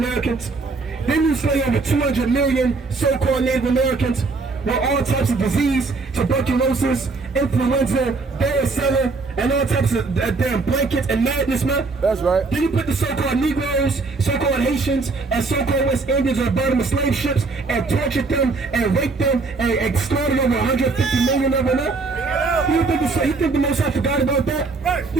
Then you slay over 200 million so-called Native Americans with all types of disease, tuberculosis, influenza, varicella, and all types of damn blankets and madness, man. That's right. Then you put the so-called Negroes, so-called Haitians, and so-called West Indians on the bottom of slave ships and tortured them and raped them and slaughtered over 150 million of them, man. You think the Most High forgot about that?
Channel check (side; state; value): left; quieter; 3.9 dB